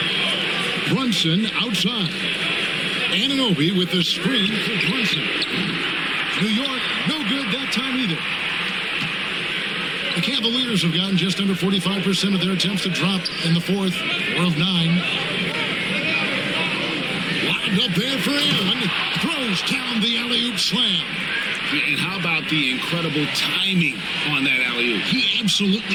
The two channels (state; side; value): noise; right; rumble, 25 dB below the sound